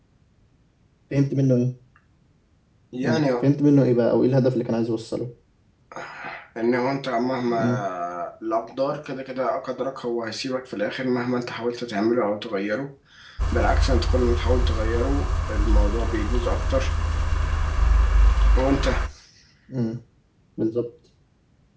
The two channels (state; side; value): identical; both; correlation 1.00